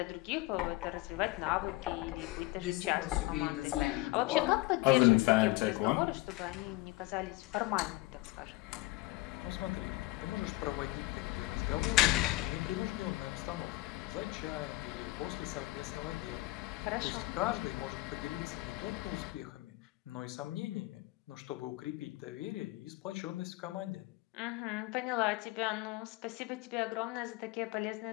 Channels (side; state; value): right; quieter; 20.2 dB